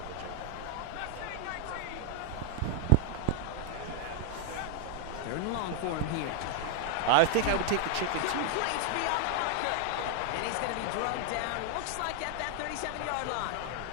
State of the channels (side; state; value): both; different; correlation 0.00